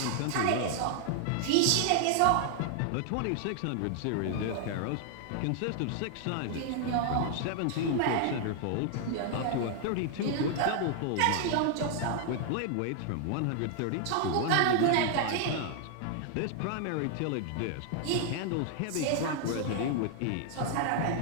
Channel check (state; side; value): different; both; correlation 0.00